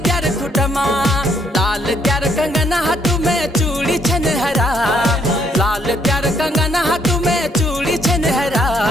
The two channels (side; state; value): both; normal; correlation 0.69